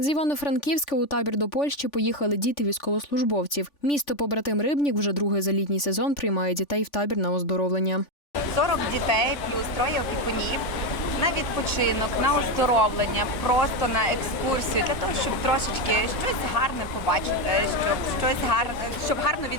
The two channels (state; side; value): late; right; 3.5 ms